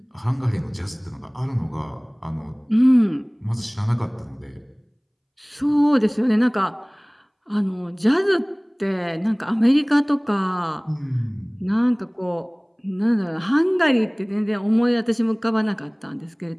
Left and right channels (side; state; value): both; identical; correlation 1.00